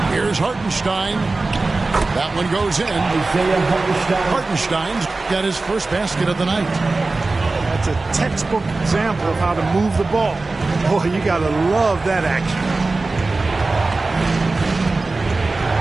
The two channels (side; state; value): left; quieter; 3.5 dB